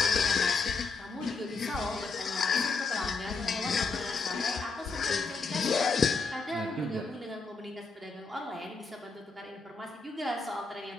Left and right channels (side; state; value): right; quieter; 4.3 dB